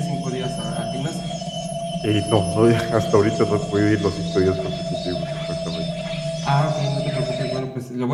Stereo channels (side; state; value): both; identical; correlation 1.00